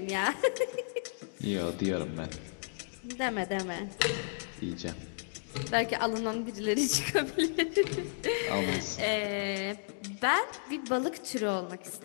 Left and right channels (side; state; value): right; silent; digital silence